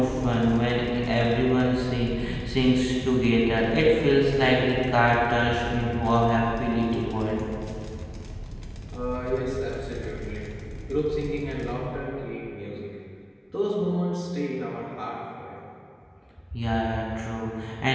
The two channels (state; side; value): identical; both; correlation 1.00